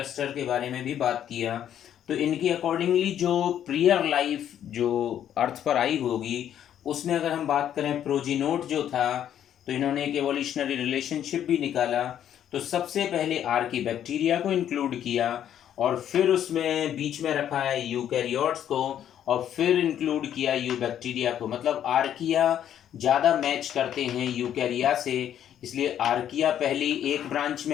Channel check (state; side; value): quieter; right; 10.2 dB